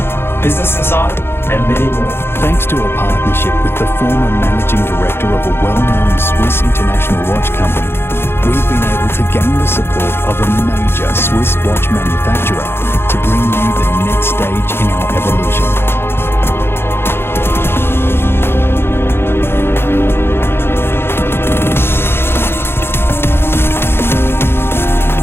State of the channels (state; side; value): late; right; 0.11 ms